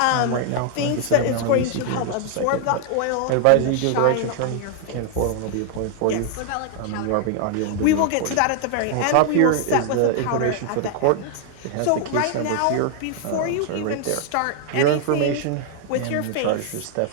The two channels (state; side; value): different; both; correlation 0.00